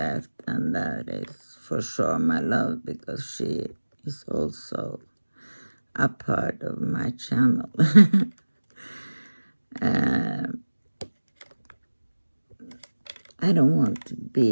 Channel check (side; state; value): both; inverted; correlation -1.00